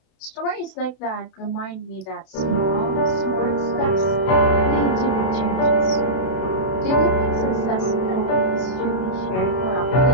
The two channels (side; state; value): right; late; 32 ms